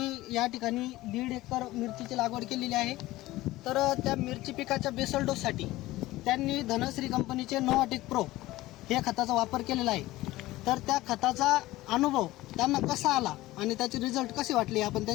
या ठिकाणी 1.5 एकर मिरचीची लागवड केलेली आहे. तर त्या मिरची पिकाच्या बेसल डोससाठी त्यांनी धनश्री कंपनीचे नोवाटेक प्रो हे खताचा वापर केलेला आहे. तर त्या खताचा अनुभव त्यांना कसा आला आणि त्याचे रिझल्ट कसे वाटले आपण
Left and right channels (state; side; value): quieter; right; 17.6 dB